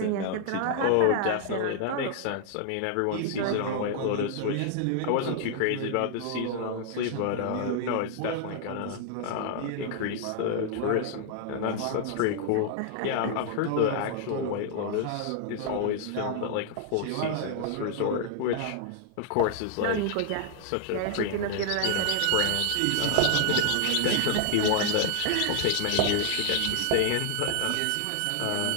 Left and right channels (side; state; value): both; different; correlation -0.01